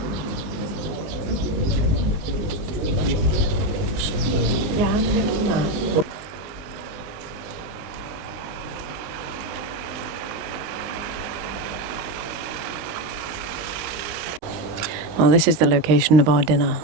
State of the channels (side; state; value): left; late; 19 ms